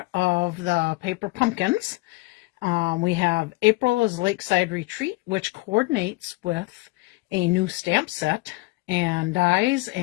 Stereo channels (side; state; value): right; quieter; 22.6 dB